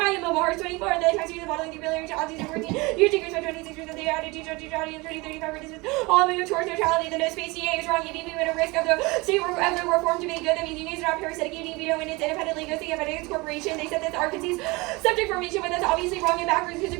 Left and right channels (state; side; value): quieter; left; 24.4 dB